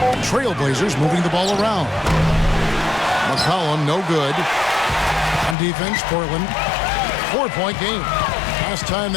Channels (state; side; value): drops out; right; at 5.6 s